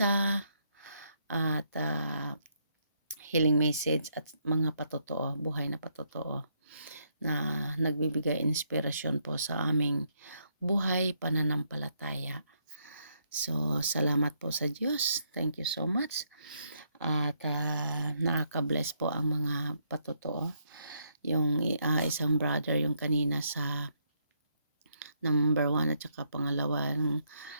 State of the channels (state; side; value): inverted; both; correlation -0.75